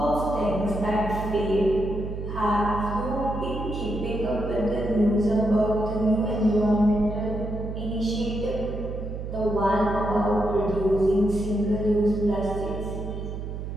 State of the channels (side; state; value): right; noise; hum, 6 dB below the sound